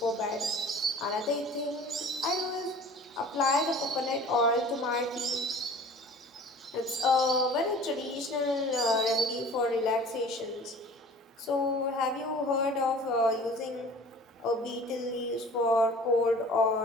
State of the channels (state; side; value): normal; both; correlation 0.45